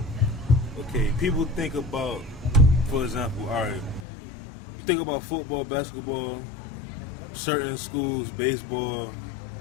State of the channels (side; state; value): right; drops out; at 4.0 s